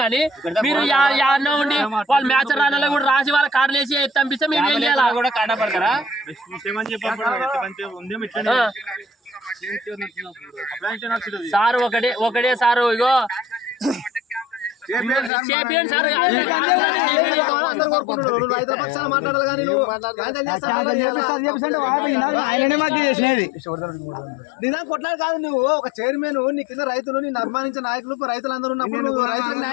కానీ మీరు యాడనే ఉండి వాళ్ళు మ్యాచ్ రానాలో కూడా రాసి వాళ్ళ కాడలు వేసి పంపిస్తే మేము ఏం చేయాలి కూడా కాడ పడతారా సార్? ఒకటే సారు ఇగో రైతుల పక్షాన మాట్లాడాలి కానీ ఆయననే మాకు చేసినది నిజాన్ని కొట్లాడు కాదు. నువ్వు ఒక చైర్మన్, నీ కింద రైతులు, నిన్ను అభిమానించిన నాయకులు, రైతులందరూ ఉన్నప్పుడు నువ్వు రైతులకు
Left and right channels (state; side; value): drops out; right; at 15.3 s